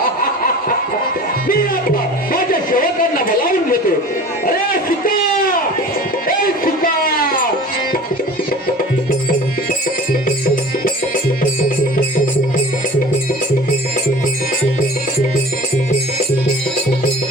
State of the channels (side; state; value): both; normal; correlation 0.41